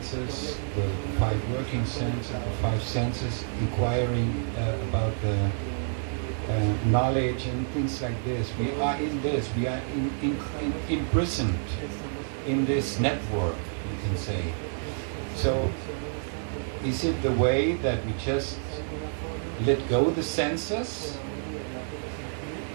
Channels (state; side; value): silent; left; 59 dB below the other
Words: the 5 working senses, the 5 senses inquiring about the knowledge and things like this. We are in this, we are imprisoned in this network, you can say. So, is it the way that we just let go the senses